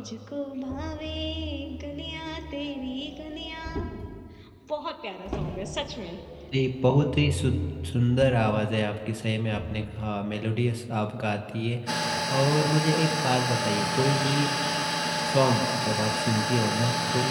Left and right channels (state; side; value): identical; both; correlation 1.00